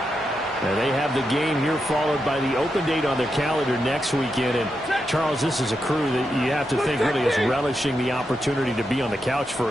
And they have the game here followed by the open date on their calendar next weekend. And, Charles, this is a crew that you have to think really is relishing the opportunity to be on the couch for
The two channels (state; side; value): normal; both; correlation 0.85